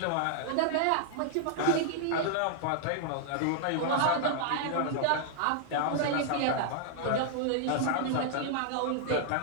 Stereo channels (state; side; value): different; both; correlation -0.01